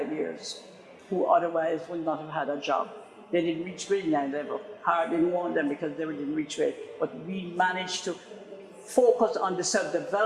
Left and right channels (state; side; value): identical; both; correlation 1.00